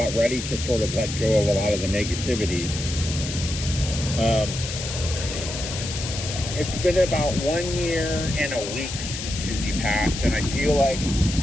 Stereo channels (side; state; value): left; noise; hiss, 7 dB below the sound